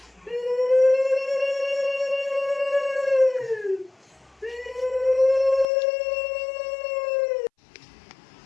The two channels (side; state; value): right; drops out; at 5.7 s